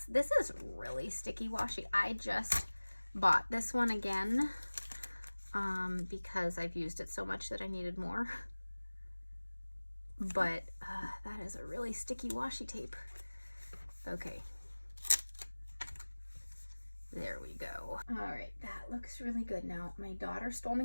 This is really sticky washi. I just bought this one again because I've used it so much that I needed more. But that is a really sticky washi tape. Okay. There we go. All right, that looks really good. Now, my daughter stole my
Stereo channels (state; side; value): inverted; both; correlation -1.00